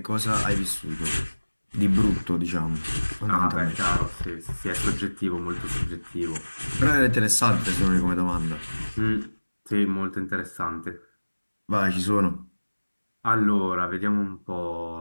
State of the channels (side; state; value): both; inverted; correlation -1.00